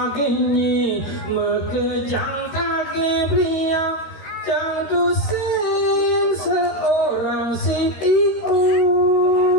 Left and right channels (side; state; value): right; late; 13 ms